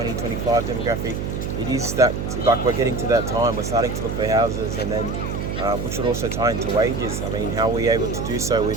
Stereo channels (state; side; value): noise; right; hum, 3 dB below the sound